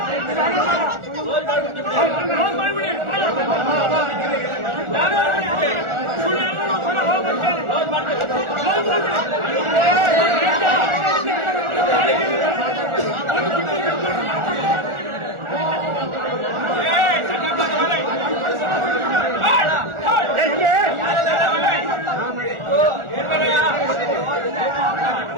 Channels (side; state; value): left; late; 1.4 ms